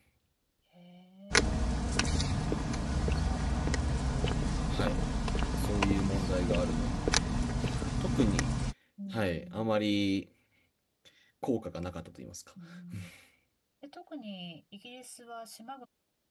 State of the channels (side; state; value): both; identical; correlation 1.00